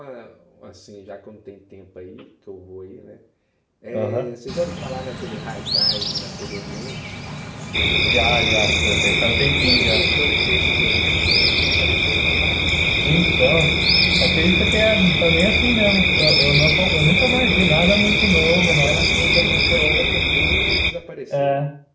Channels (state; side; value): identical; both; correlation 1.00